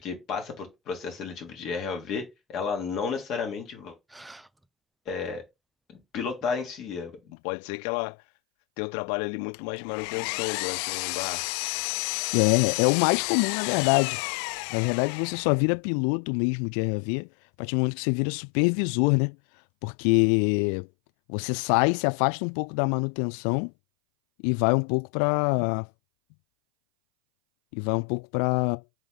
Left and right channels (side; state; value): right; drops out; at 7.2 s